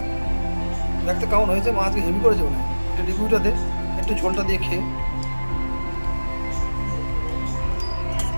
দেখতে কেমন হয়েছে, মা আজকে হেভি করেছে মনে হয়। এটা রিভিউটা দে, একটু ঝোলটা দিয়ে খেয়ে।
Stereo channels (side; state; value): both; inverted; correlation -1.00